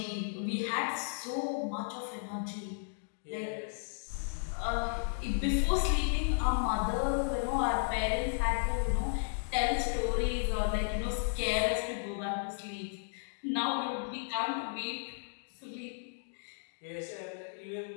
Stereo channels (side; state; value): right; silent; digital silence